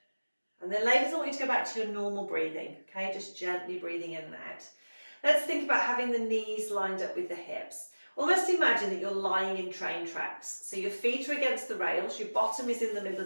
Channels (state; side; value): inverted; both; correlation -1.00